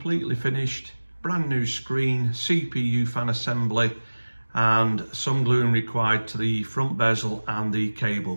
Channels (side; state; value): both; inverted; correlation -1.00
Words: finished. Brand new screen, CPU fan assembly, and some gluing required to the front bezel and the cable